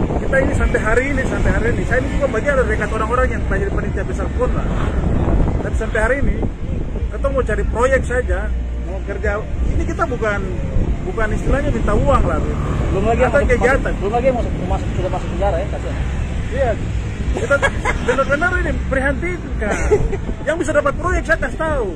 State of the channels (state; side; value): identical; both; correlation 1.00